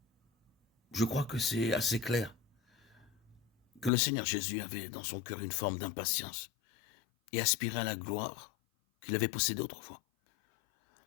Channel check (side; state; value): right; drops out; at 3.9 s